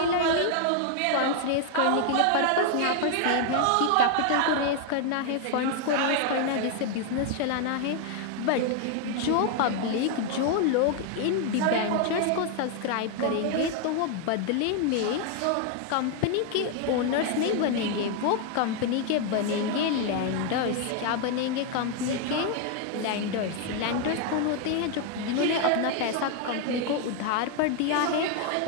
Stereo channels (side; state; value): both; different; correlation 0.00